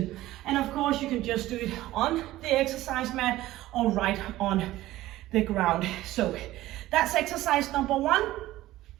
And of course, you can just do it on the exercise mat or right on the ground. So that's exercise number 1.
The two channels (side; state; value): left; quieter; 16.0 dB